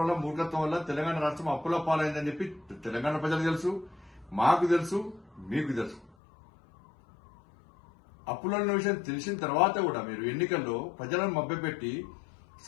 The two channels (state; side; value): drops out; right; at 6.1 s